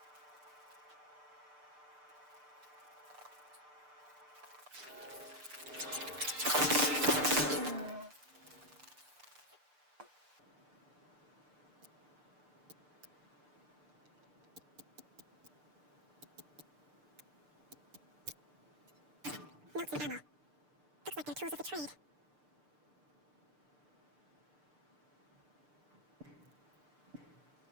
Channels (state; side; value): late; left; 6.7 ms